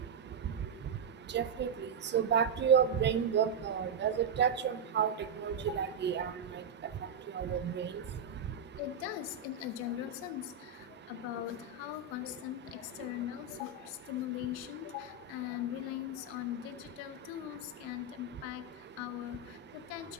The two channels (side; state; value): left; quieter; 4.3 dB